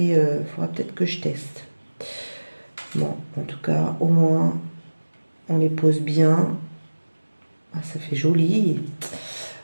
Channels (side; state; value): both; inverted; correlation -1.00